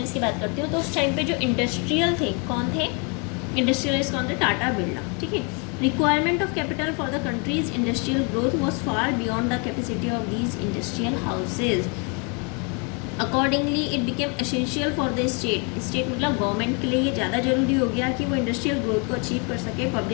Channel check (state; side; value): quieter; right; 34.4 dB